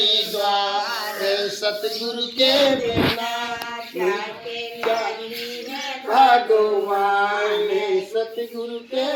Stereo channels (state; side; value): identical; both; correlation 1.00